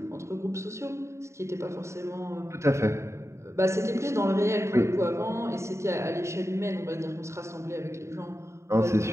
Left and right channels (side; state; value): left; late; 0.14 ms